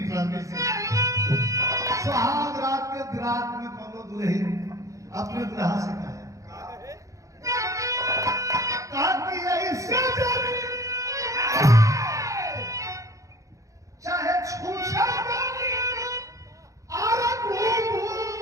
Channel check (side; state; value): left; late; 0.16 ms